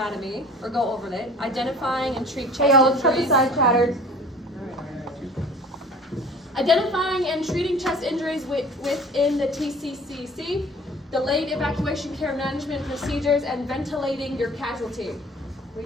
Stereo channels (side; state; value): both; normal; correlation 0.46